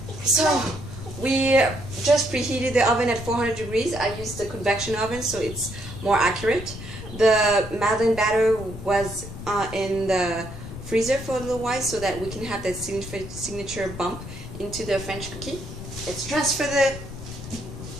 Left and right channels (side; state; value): left; noise; rumble, 11 dB below the sound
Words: So we just preheated the oven at 400 degrees. I used the convection oven so it's more accurate. The Madeleine batter was in the freezer for a little while so that we can have that signature bump into the French cookie. Let's transfer the